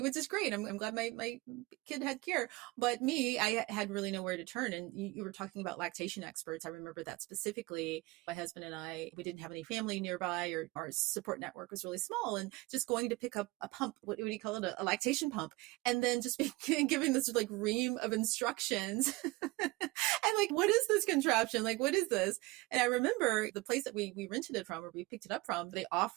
which is great. I'm glad my kid had care, but I had really nowhere to turn. And you were talking about lactation experts. I remember that specifically. My husband and we didn't have any family nearby, or our support network was really small, and just going to pick up a pump, what do you call it? A lactation pump. And then just giving this like ream of instructions. And like, what is this contraption? Like, what is this? And I remember the place that we rented it from, or we picked it up from, they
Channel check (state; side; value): quieter; left; 22.2 dB